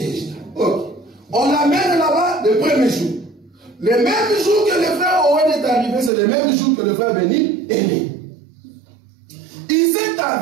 Ok. On l'amène là-bas le premier jour. Le même jour que le frère Owen est arrivé, c'est le même jour que le frère Béni est né. Il s'est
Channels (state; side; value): drops out; left; at 6.1 s